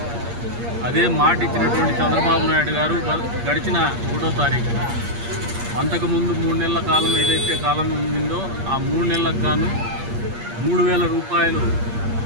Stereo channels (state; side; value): late; left; 8.5 ms